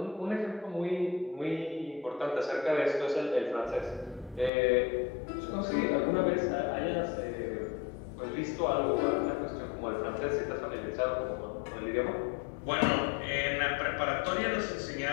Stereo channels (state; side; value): drops out; right; at 4.5 s